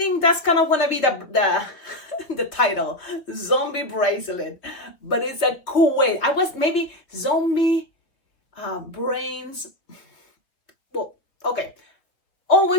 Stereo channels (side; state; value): right; late; 3.1 ms